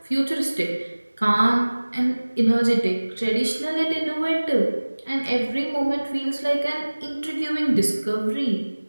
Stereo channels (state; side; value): inverted; both; correlation -1.00